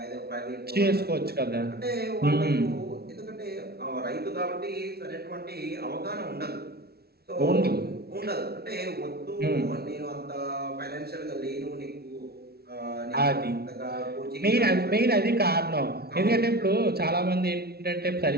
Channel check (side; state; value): left; late; 0.45 ms